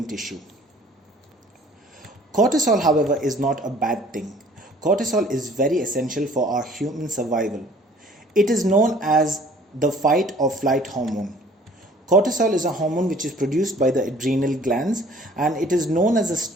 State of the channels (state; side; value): normal; both; correlation 0.53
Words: tissue. Cortisol, however, is not a bad thing. Cortisol is very essential for our human survival. It is known as the fight or flight hormone. Cortisol is a hormone which is produced by the adrenal glands, and it is known as a